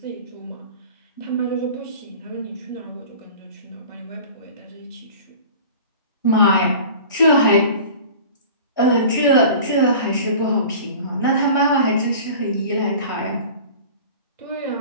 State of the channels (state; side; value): inverted; both; correlation -0.41